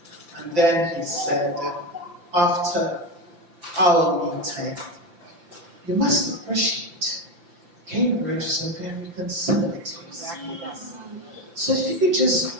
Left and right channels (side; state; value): left; late; 5.8 ms